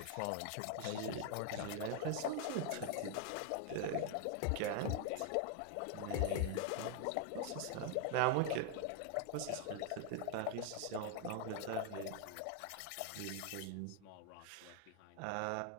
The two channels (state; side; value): different; both; correlation 0.00